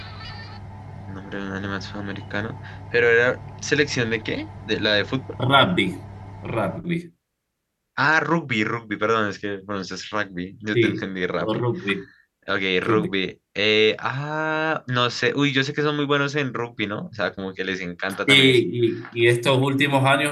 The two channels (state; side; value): identical; both; correlation 1.00